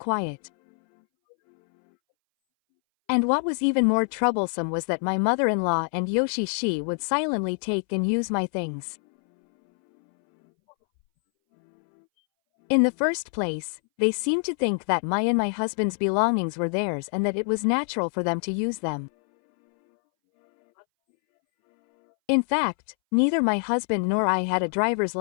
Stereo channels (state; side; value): silent; right; 62 dB below the other